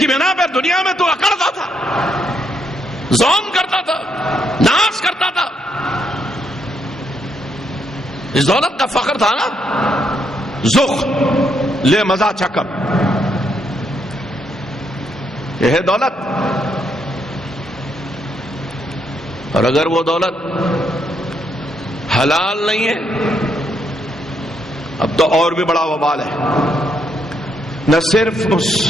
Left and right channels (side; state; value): both; normal; correlation 0.76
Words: بنا پر دنیا میں تو اکڑتا تھا، زوم کرتا تھا، ناز کرتا تھا. اس دولت کا فخر تھا نا، زخ لے مزہ چکم، یہ ہے دولت. اور اگر وہ دولت حلال نہیں ہے اب تو اور بھی بڑا وبال ہے. نہ صرف اس